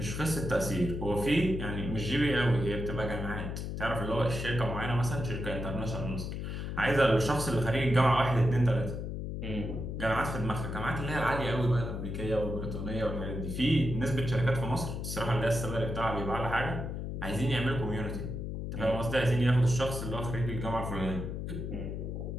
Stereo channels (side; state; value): left; noise; hum, 5 dB below the sound